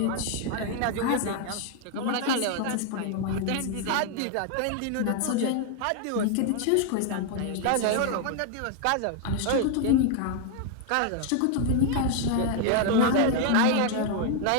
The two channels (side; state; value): both; different; correlation 0.00